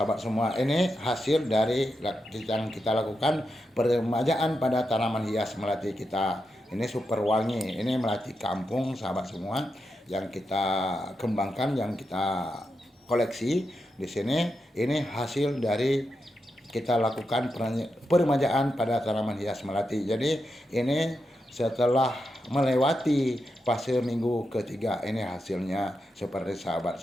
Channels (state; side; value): normal; both; correlation 0.87